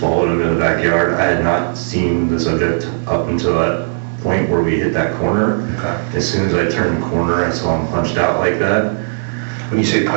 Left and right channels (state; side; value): silent; left; 69 dB below the other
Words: him in the backyard. I had not seen the subject up until that point where we hit that corner. Okay. As soon as I turned the corner, I saw him punched out like that. When you say